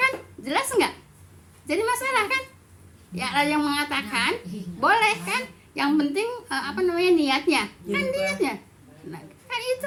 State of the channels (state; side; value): identical; both; correlation 1.00